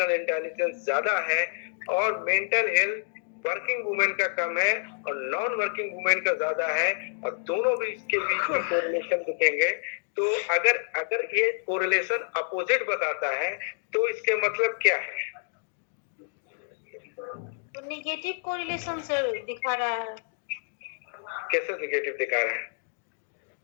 इंटेलिजेंस ज्यादा है और मेंटल हेल्थ वर्किंग वुमेन का कम है और नॉन वर्किंग वुमेन का ज्यादा है और दोनों भी इसके बीच में कोरिलेशन दिखेंगे। तो अगर ये कोरिलेशन अपोजिट बताता है तो इसके मतलब क्या है? तो निगेटिव कोरिलेशन सर दिखा रहा है। कैसे निगेटिव दिखा रहा है?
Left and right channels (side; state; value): right; silent; 57 dB below the other